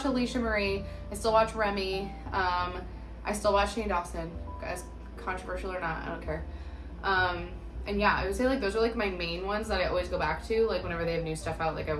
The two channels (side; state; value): both; identical; correlation 1.00